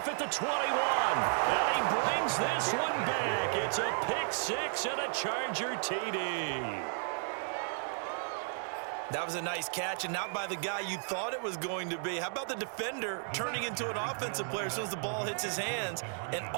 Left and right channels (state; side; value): silent; left; 55 dB below the other